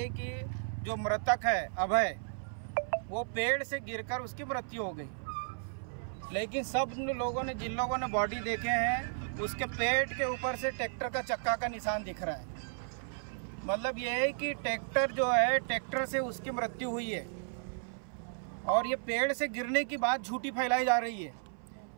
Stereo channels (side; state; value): left; silent; 55 dB below the other